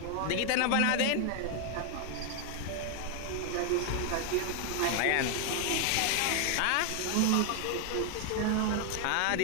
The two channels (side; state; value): both; different; correlation 0.00